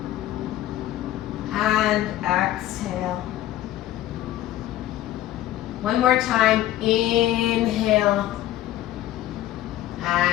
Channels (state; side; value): quieter; right; 13.8 dB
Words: and exhale. One more time. Inhale